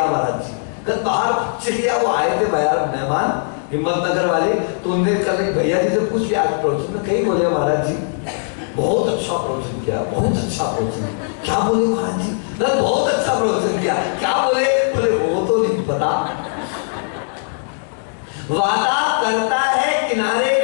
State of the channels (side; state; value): right; silent; digital silence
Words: महाराज जी। कल बाहर चिड़िया वो आए थे यार मेहमान हिम्मतनगर वाले, तो उनने कल भैया जी से पूछ लिया आज प्रवचन में, कहीं बोले महाराज जी बहुत अच्छा प्रवचन किया, बहुत अच्छा प्रवचन। क्या बोले महाराज जी? बहुत अच्छा प्रवचन किया। क्या बोले? बोले वो तो नहीं पता। वादा करता है किनारे